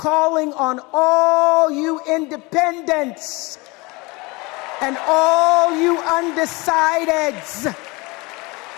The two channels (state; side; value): quieter; right; 25.4 dB